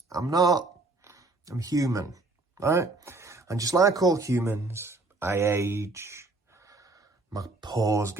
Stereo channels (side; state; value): left; quieter; 3.3 dB